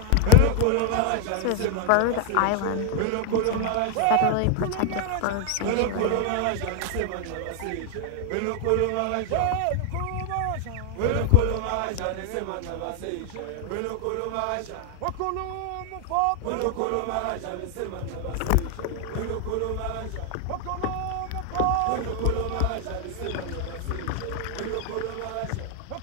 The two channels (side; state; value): both; different; correlation 0.00